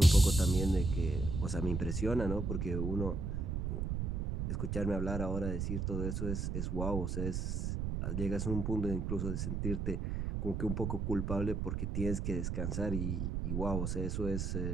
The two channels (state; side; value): noise; right; rumble, 1 dB below the sound